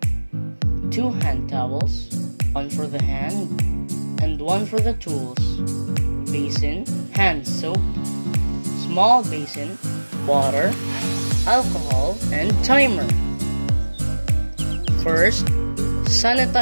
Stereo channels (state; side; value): inverted; both; correlation -1.00